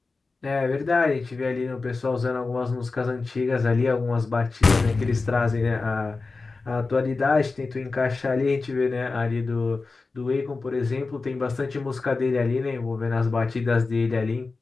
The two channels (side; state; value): right; quieter; 3.9 dB